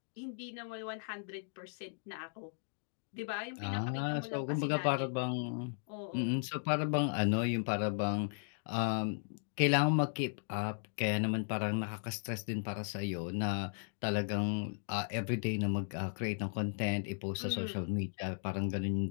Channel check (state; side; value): silent; right; digital silence